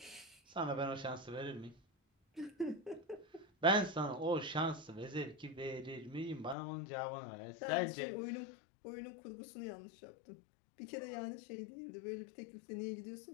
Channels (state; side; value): drops out; right; at 6.6 s